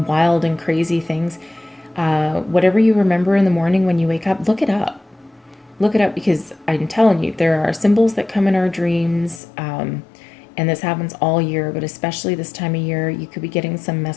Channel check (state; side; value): drops out; right; at 9.4 s